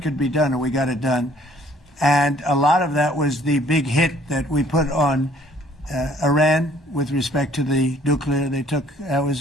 could be done, and we got it done. And a lot of that was the big hit that we put on Iran with respect to the nuclear. They took that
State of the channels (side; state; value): both; normal; correlation 0.59